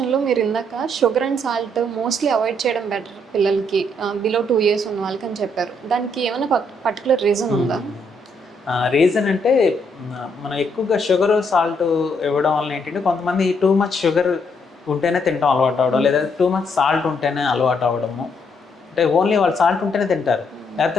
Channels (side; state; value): both; normal; correlation 0.73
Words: మీరు ఇందాక sugar and salt mostly avoid చేయడం బెటర్ పిల్లలకి బిలో 2 years ఉన్న వాళ్ళకి అని చెప్పారు. దానికి ఏమైనా పర్టికులర్ రీజన్ ఉందా? రీజన్ అంటే మనం ఎక్కువగా షుగర్ సాల్ట్ ఇవ్వడం వల్ల ఏంటంటే కొంతమంది టూ మచ్ షుగర్ ఉంటేనే తింటాం అలవాటు అవ్వడం, లేదా టూ మచ్ సాల్ట్ ఉంటేనే అలవాటు అవ్వడము. అంటే ఓన్లీ వాళ్ళు సాల్ట్ ఉంటేనే తింటారు,